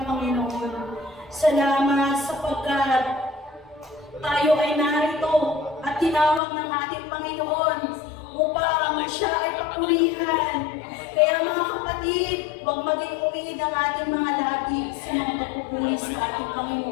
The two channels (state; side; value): drops out; right; at 6.4 s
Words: Panginoon. Salamat sapagkat tayo ay narito at tinawag ng ating Panginoon upang siya ay papurihan. Kaya mga kapatid, huwag maging umid ang ating mga labi sa mga pagpupuri sa ating